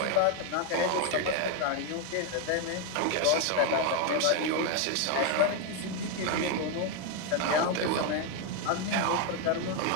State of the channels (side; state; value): both; different; correlation 0.02